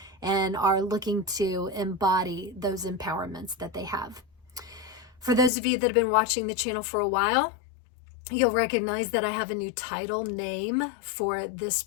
and are looking to embody those empowerments that they have. For those of you that have been watching the channel for a while, you'll recognize that I have a new title name for this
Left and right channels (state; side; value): drops out; right; at 5.5 s